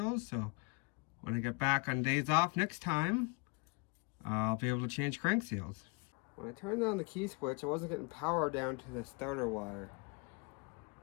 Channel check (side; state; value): right; quieter; 30.8 dB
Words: so when I get back on days off next time, I'll be able to change crank seals. When I turned on the key switch, I wasn't getting power down to the starter wire.